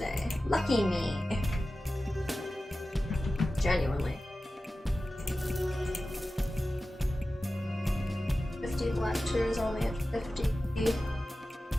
Lucky me. Genuinely. 50 black tears, only at 50.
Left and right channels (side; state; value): both; normal; correlation 0.95